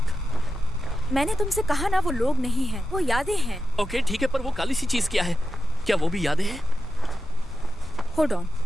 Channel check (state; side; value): normal; both; correlation 0.90